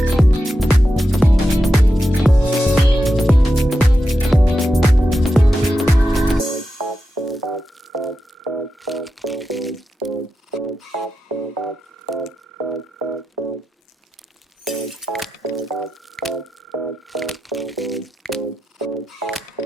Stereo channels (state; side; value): normal; both; correlation 0.89